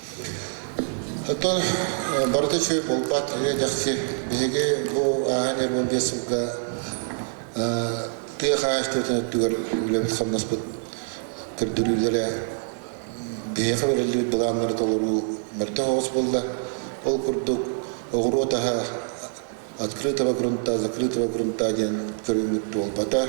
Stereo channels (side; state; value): left; silent; 61 dB below the other